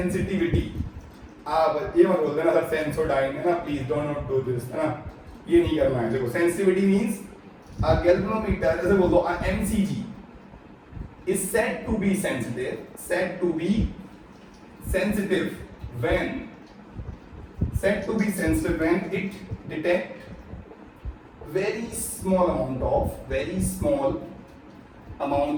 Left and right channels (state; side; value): identical; both; correlation 1.00